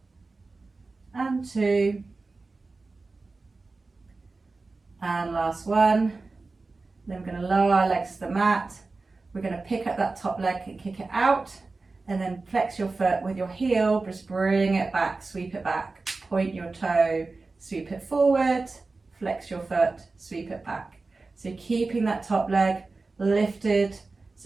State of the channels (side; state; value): left; quieter; 3.7 dB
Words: And 2. And last one. Then we're going to lower our legs to the mat. We're going to pick up that top leg and kick it out. And then flex your foot with your heel, just bring it back, sweep it back. Point your toe, sweep it forward, flex your foot, sweep it back. So keeping that top leg lifted,